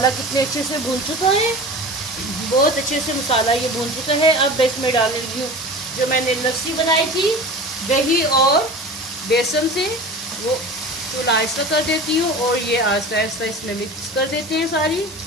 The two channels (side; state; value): both; normal; correlation 0.35